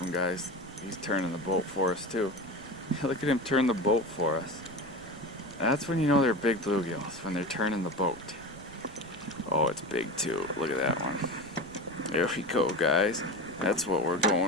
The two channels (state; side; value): noise; right; rumble, 20 dB below the sound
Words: guys. He's turning the boat for us too. Look at him turn the boat for us. That's when you know they're big bluegills, when they're turning the boat. Oh, it's big too. Look at that one. There we go, guys. That's what we're